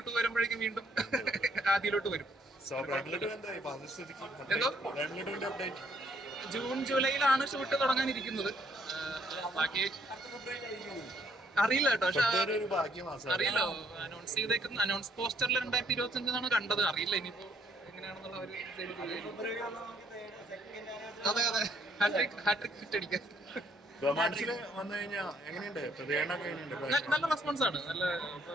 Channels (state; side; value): normal; both; correlation 0.68